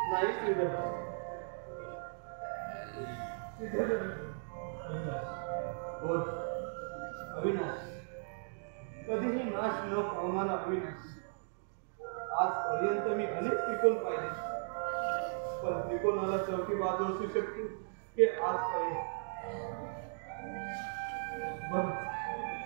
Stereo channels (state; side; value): silent; left; digital silence